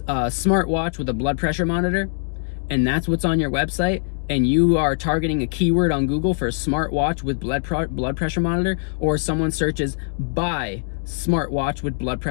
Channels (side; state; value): right; silent; 64 dB below the other